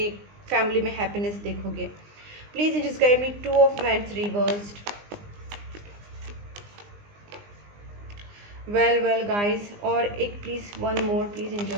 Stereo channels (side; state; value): left; late; 20 ms